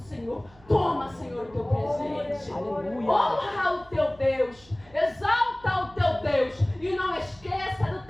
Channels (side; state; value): right; noise; hum, 26 dB below the sound